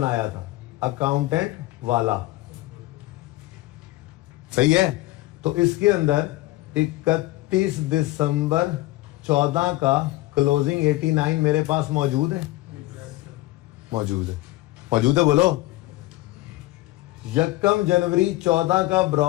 था, अकाउंटेंट वाला, सही है। तो इसके अंदर 31 दिसंबर 14 का क्लोजिंग 89 मेरे पास मौजूद है। बोलो। 1 जनवरी 14 का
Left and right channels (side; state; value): right; quieter; 18.4 dB